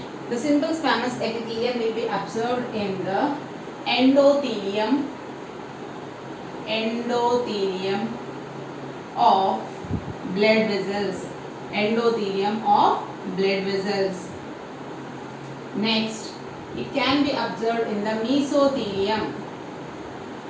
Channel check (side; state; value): both; identical; correlation 1.00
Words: the endothelium of blood vessels. Endothelium of blood vessels. Next, it can be observed in the mesothelium